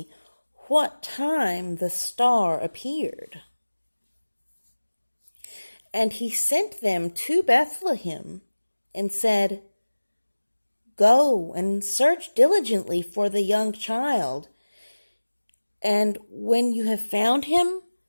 what time the star appeared. And he sent them to Bethlehem and said, Go and search diligently for the young child, and when you have found him,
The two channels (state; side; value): inverted; both; correlation -1.00